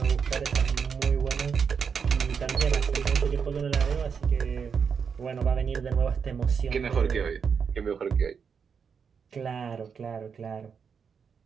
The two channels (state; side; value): quieter; left; 6.4 dB